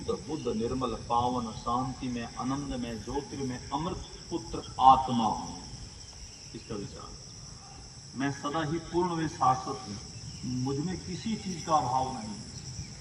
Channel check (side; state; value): both; identical; correlation 1.00